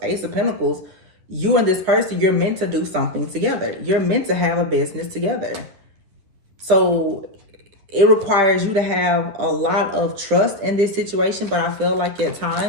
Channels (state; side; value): late; left; 10 ms